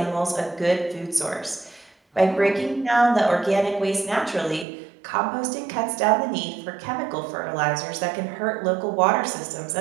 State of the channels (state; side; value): drops out; left; at 4.7 s